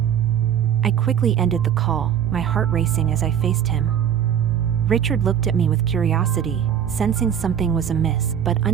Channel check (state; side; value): quieter; left; 9.0 dB